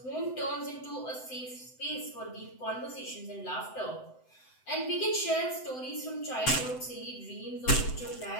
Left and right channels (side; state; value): right; late; 7.8 ms